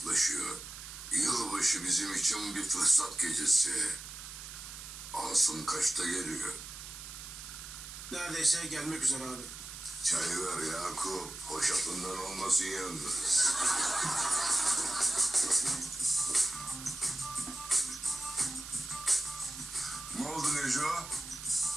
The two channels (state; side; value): noise; right; hiss, 11 dB below the sound